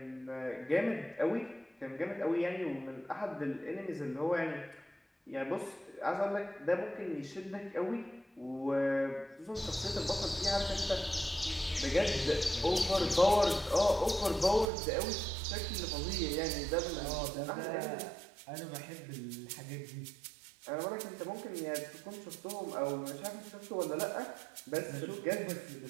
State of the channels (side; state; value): left; drops out; at 14.7 s